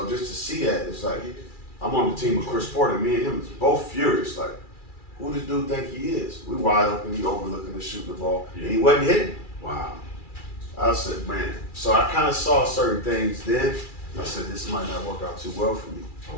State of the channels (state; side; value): late; right; 2.4 ms